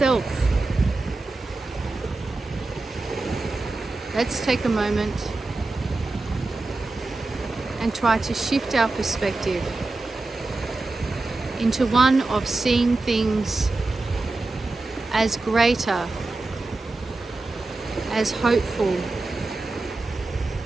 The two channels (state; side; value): quieter; left; 3.3 dB